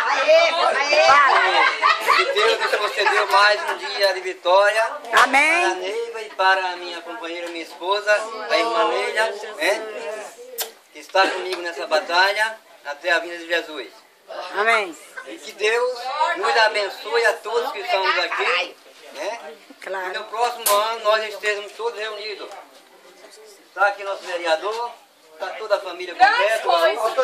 Que Deus nos concedeu mais um dia de vitória. Amém. Para a Neiva e para a minha companheira, minha esposa, a irmã Neila, né? Que está comigo nessa batalha até a vinda de Jesus. Amém. E que Deus nos abençoe a todos que estamos aqui, né? Claro. E no próximo ano nós estejamos todos reunidos. Está aqui nosso vereador, está toda a família completa, a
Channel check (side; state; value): both; identical; correlation 1.00